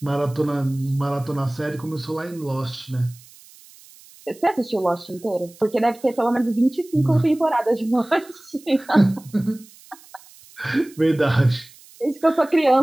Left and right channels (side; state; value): right; noise; hiss, 24 dB below the sound